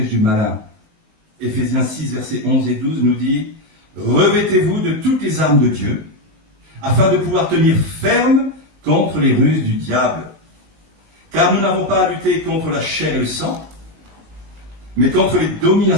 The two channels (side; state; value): left; late; 19 ms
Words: du malin. Éphésiens 6, versets 11 et 12 nous dit, revêtez-vous de toutes les armes de Dieu, afin de pouvoir tenir ferme contre les ruses du diable. Car nous n'avons pas à lutter contre la chair et le sang, mais contre les